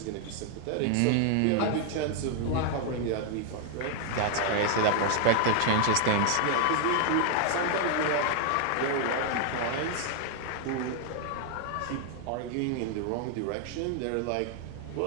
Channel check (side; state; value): both; different; correlation 0.00